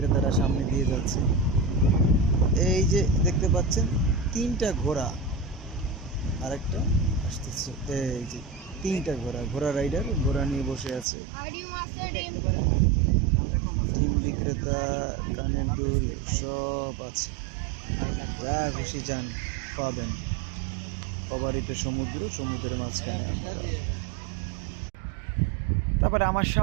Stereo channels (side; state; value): left; drops out; at 11.1 s